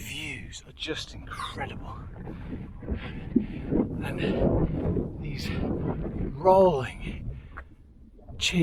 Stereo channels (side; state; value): both; identical; correlation 1.00